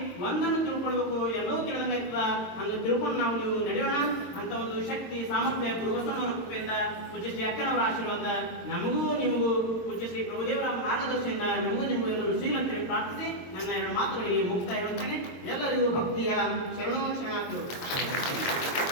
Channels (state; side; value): late; right; 22 ms